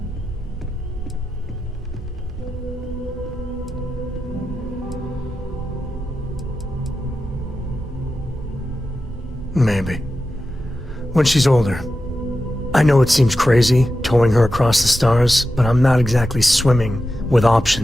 Maybe. When she's older. I know it seems crazy, towing her across the stars, but I'm not exactly swimming with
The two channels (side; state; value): both; normal; correlation 0.91